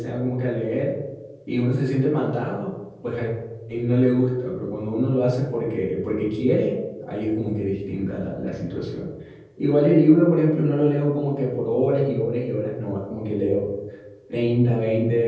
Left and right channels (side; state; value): both; identical; correlation 1.00